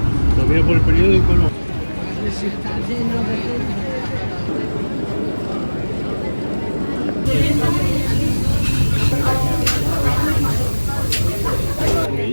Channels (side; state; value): both; inverted; correlation -1.00